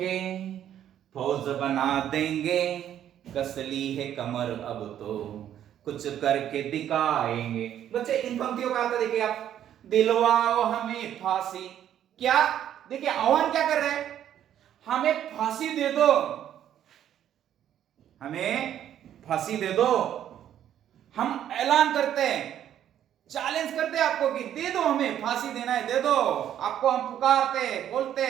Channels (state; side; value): quieter; left; 10.6 dB